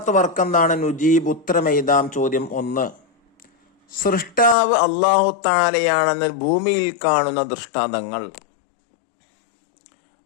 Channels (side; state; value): right; drops out; at 4.5 s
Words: വർക്ക് എന്താണ്? നുജീബ്, ഉത്തരമെഴുതാം. ചോദ്യം 1. സൃഷ്ടാവ് അല്ലാഹു തആലയാണെന്ന് ഭൂമിയിൽ കാണുന്ന ദൃഷ്ടാന്തങ്ങൾ.